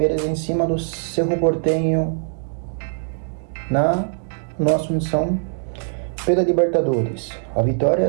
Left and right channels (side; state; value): left; silent; digital silence